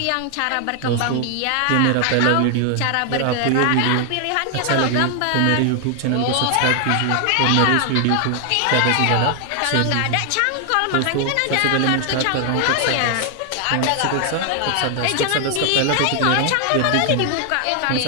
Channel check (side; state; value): both; different; correlation 0.00